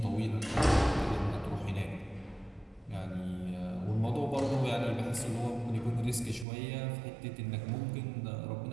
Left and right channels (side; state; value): left; drops out; at 6.5 s